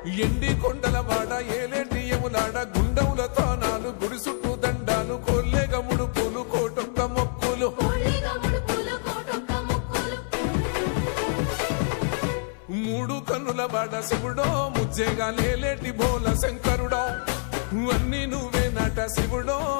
ఎండి కొండలవాడ ఏలేటి యములాడ గుండములతో నాలు గుడి చుట్టూ దండాలు కొల్లేగ ముడుపులు కోటొక్క మొక్కులు మూడు కన్నుల బాడ శివుడో ముజ్జేగా లేలేటి బోల శంకరుడో అన్నీ నువ్వే నట శివుడో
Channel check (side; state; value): right; silent; 61 dB below the other